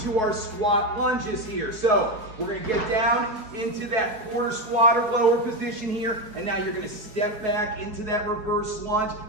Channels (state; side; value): late; left; 4.7 ms